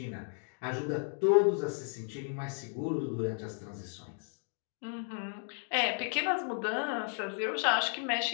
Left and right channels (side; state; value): right; silent; 55 dB below the other